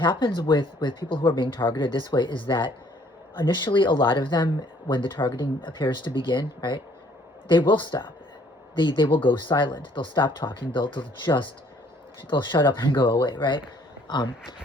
with people who are being targeted this way is that initially, a lot of them, when the targeting appears to begin, right, they will stop. They will go silent. They'll stop talking. They'll shut up and go away, right?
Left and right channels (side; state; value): both; normal; correlation 0.61